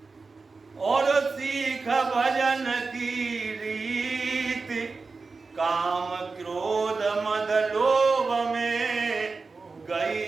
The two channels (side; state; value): left; quieter; 4.2 dB